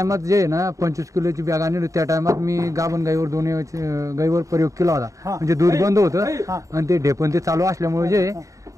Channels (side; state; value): left; late; 0.16 ms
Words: जे आहे ना 25 किलोची बॅग आणली, त्या टायमात मी गाभण गाईवर दोन्ही गाईवर प्रयोग केला होता. म्हणजे दूध बंद होतं आणि ते ढेपण ते चालू असल्यामुळे जे